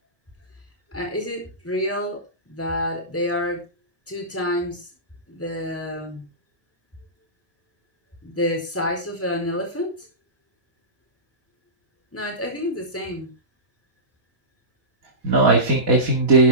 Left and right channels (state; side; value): normal; both; correlation -0.19